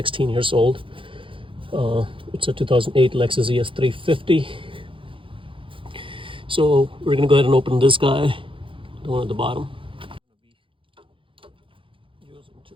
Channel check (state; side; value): late; left; 0.25 ms